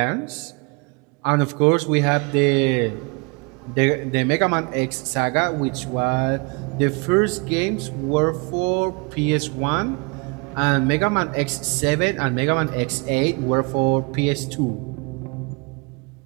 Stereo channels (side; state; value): left; quieter; 31.2 dB